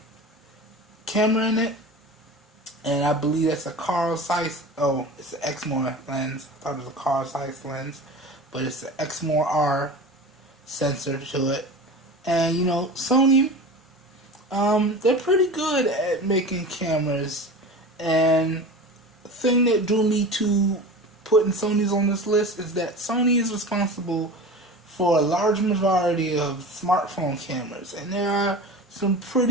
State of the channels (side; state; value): both; normal; correlation 0.33